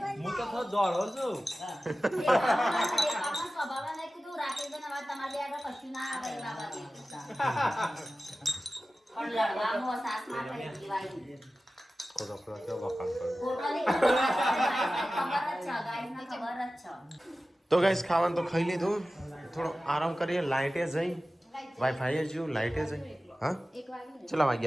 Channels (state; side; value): normal; both; correlation 0.95